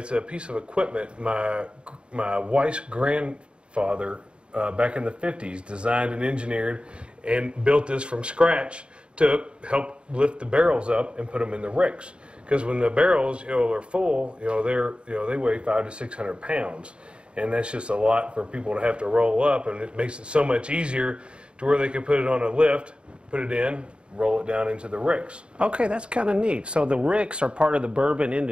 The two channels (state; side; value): late; left; 0.055 ms